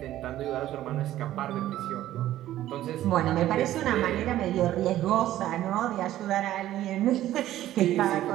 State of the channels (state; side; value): quieter; left; 13.6 dB